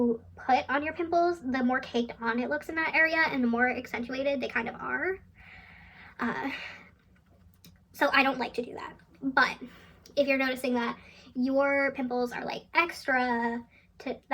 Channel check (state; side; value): identical; both; correlation 1.00